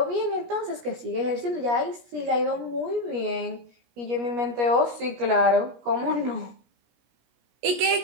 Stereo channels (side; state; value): left; late; 17 ms